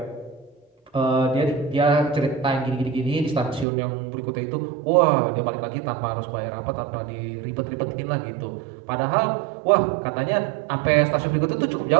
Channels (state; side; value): drops out; left; at 3.7 s